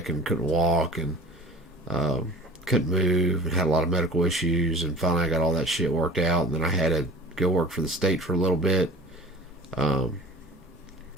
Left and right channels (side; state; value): both; normal; correlation 0.43